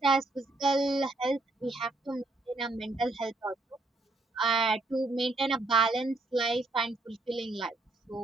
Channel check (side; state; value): left; quieter; 3.0 dB